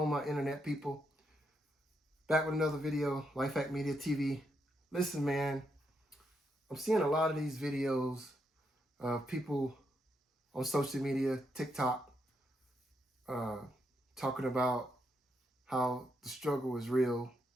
my internet people? Back with another video, Lifehack Media TV. Listen, man, I'm seeing a lot of these videos of people on social media, TikTok, talking about how the struggle is real.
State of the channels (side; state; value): both; normal; correlation 0.80